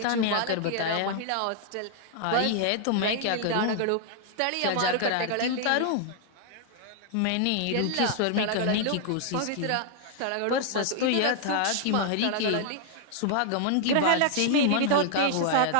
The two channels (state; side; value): different; both; correlation -0.01